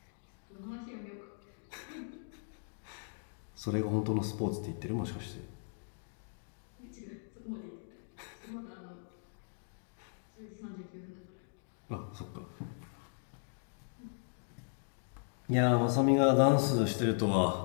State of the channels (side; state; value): right; silent; digital silence